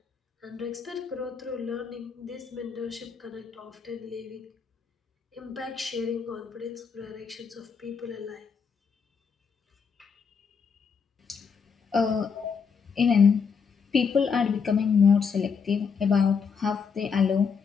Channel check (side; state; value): right; quieter; 6.0 dB